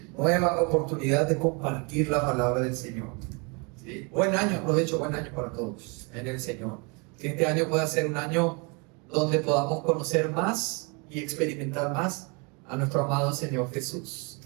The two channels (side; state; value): left; quieter; 31.9 dB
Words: nueva oportunidad de compartir la palabra del Señor. ¿Sí? Buen año, aprovecho, buen año para todos en el Señor. Que este año pueda ser un año donde podamos conocer más y experimentar más a nuestro amado Señor Jesús,